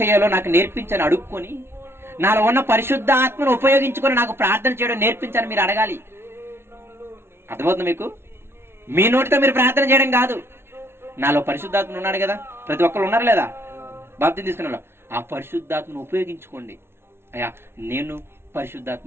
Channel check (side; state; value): left; late; 0.12 ms